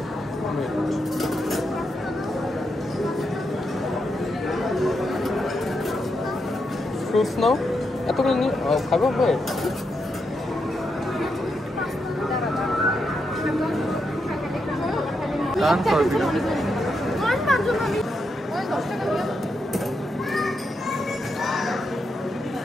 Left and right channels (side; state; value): both; normal; correlation 0.83